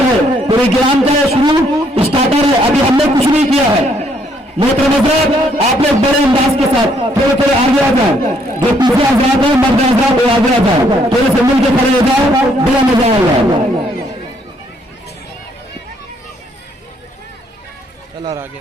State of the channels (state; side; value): normal; both; correlation 0.69